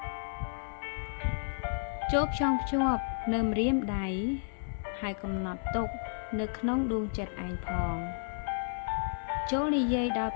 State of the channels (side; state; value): right; silent; digital silence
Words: ចូលផ្ចង់ភ្ជាប់នៅម្រាមដៃហើយកំណត់ទុកនៅក្នុងដួងចិត្តឯងផងចូលនិយាយដល់